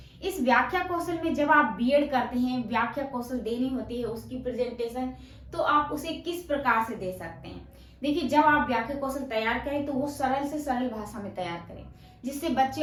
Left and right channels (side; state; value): both; identical; correlation 1.00